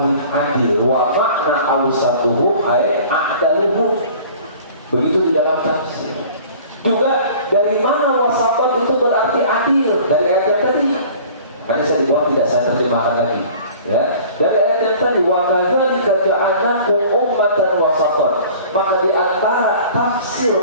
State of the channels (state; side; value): inverted; both; correlation -0.46